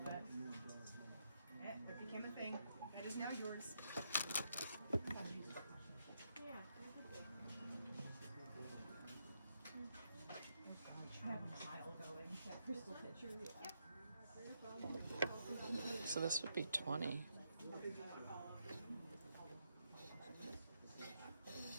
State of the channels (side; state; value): both; inverted; correlation -0.79